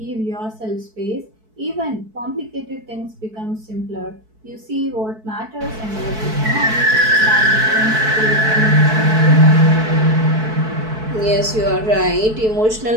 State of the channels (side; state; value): left; late; 4.6 ms